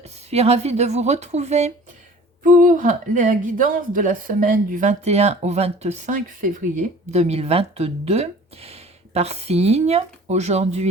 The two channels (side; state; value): both; normal; correlation 0.46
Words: suis ravie de vous retrouver pour la guidance de la semaine du 21 au 25 février 2022 par signe.